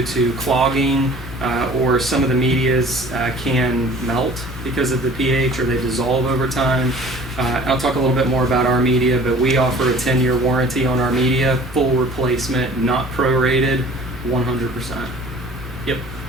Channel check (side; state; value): right; noise; hum, 19 dB below the sound